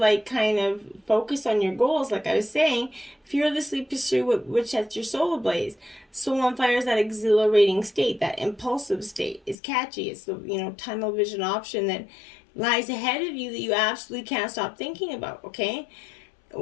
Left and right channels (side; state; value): right; drops out; at 9.6 s